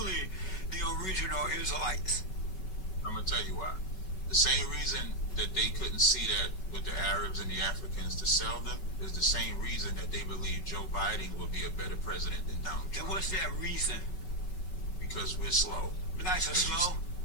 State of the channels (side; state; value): right; late; 5.3 ms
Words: the original Israelites? I'm going to tell you why. The same reason that they couldn't see that with the Arabs and the Africans to sell them is the same reason that they believe Joe Biden will be a better president than Donald Trump. And what's that reason? Because we're slow. Blacks are slow?